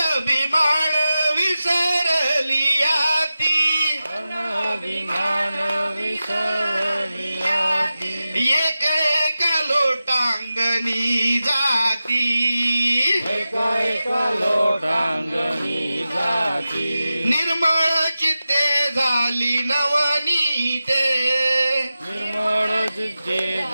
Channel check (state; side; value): inverted; both; correlation -0.93